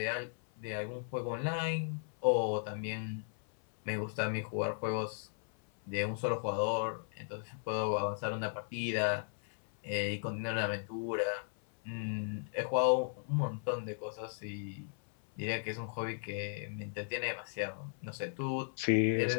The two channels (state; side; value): silent; right; 54 dB below the other